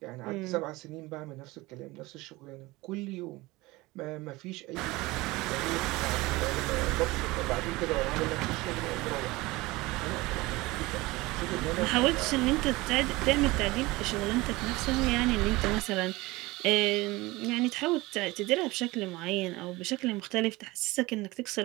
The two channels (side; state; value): left; quieter; 21.1 dB